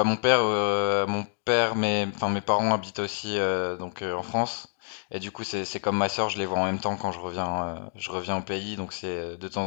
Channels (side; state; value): right; silent; digital silence